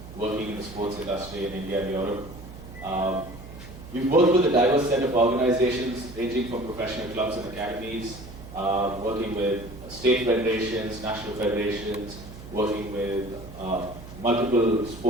working in the sports industry in India and Europe. We've worked with a diverse set of organizations ranging from professional clubs and academies, working with state federations, national federations, working with multiple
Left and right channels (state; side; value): noise; right; hum, 15 dB below the sound